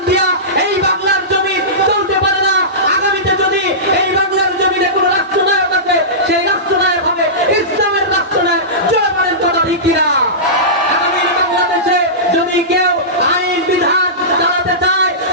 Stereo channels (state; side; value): normal; both; correlation -0.19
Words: দিয়া এই বাংলার জমি চলতে পারে না। আগামীতে যদি এই বাংলার জমিনে কোন রাষ্ট্রনায়ক আছে, সেই রাষ্ট্রনায়ক হবে ইসলামের রাষ্ট্রনায়ক। জয় বলেন কথা ঠিক কিনা? আগামীর বাংলাদেশে যদি কেউ আইন বিধান চালাতে চায়,